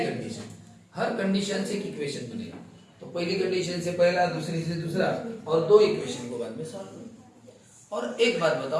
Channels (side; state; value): both; identical; correlation 1.00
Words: हर कंडीशन से एक इक्वेशन बनेगा। तो पहली कंडीशन से पहला, दूसरी से दूसरा, और 2 इक्वेशन को बाद में सॉल्व करो। और एक बात